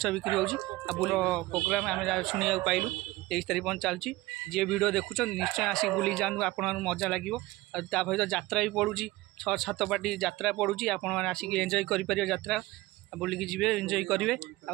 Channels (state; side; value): quieter; left; 19.2 dB